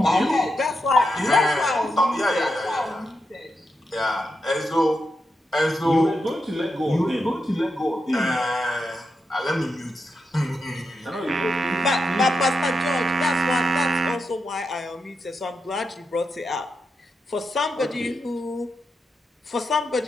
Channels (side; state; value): both; normal; correlation 0.86